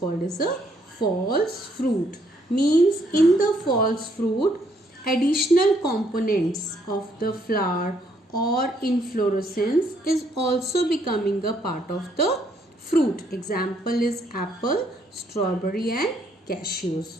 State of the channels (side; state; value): both; normal; correlation 0.70